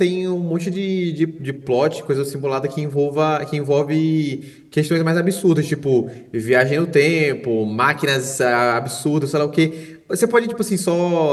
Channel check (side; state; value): both; identical; correlation 1.00